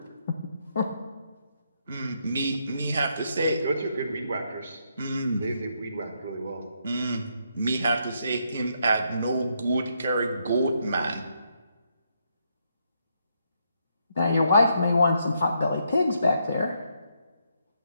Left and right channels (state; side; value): inverted; both; correlation -0.77